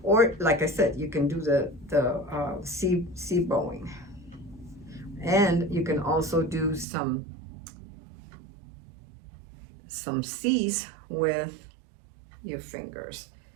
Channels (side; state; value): left; drops out; at 6.9 s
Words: Or like I said, you can do the C bowing. And you can also do some C's with your fingers.